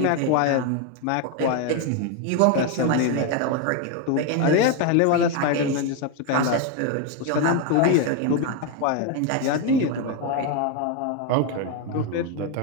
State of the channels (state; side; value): different; both; correlation 0.02